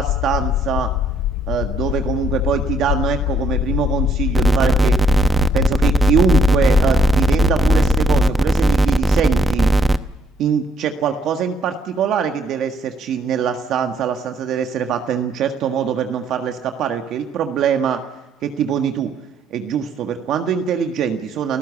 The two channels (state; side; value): normal; both; correlation 0.68